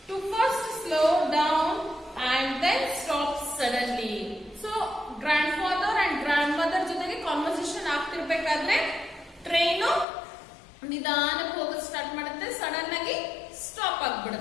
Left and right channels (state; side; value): drops out; right; at 10.1 s